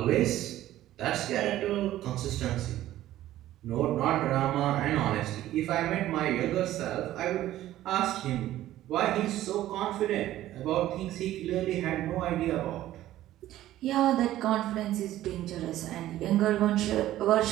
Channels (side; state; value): left; quieter; 14.0 dB